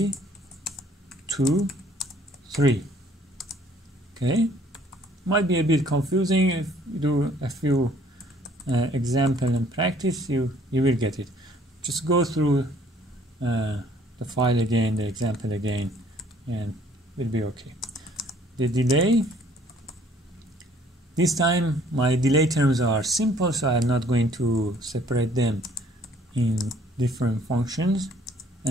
3. Okay, might be a bit confusing. If you do a few example and practice, you will get it. Just go through the file again, the example again, and will be okay. The delay, this time my delay terms are simple, so I'm not going to separate them in different functions.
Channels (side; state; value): both; normal; correlation 0.59